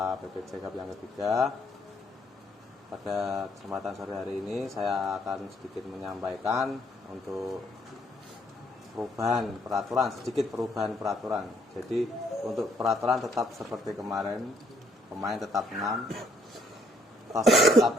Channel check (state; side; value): normal; both; correlation 0.67